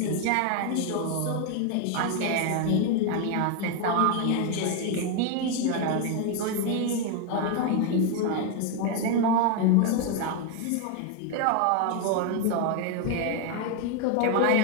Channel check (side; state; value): both; different; correlation 0.01